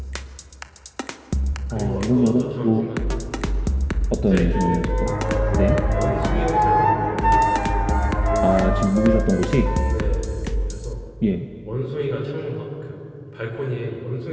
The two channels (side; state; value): both; identical; correlation 1.00